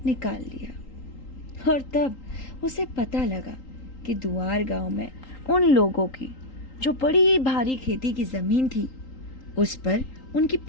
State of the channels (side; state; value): right; late; 3.8 ms